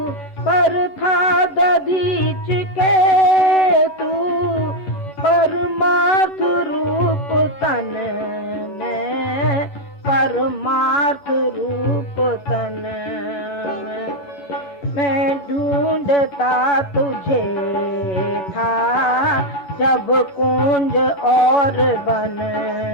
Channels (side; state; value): right; late; 11 ms